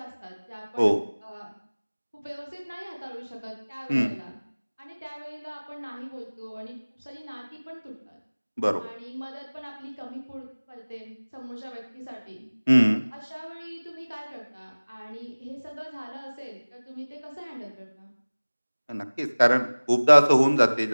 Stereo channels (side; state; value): both; inverted; correlation -1.00